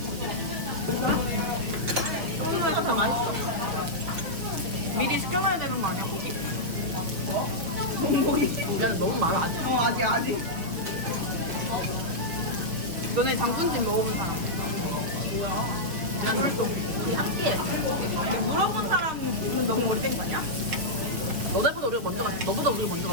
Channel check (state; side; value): late; left; 6.2 ms